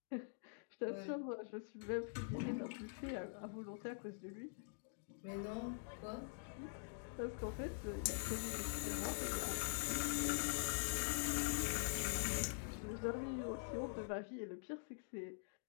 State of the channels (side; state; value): right; silent; digital silence